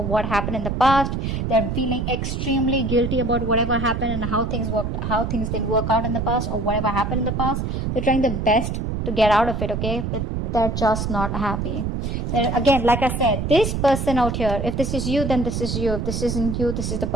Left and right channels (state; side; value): noise; right; rumble, 2 dB below the sound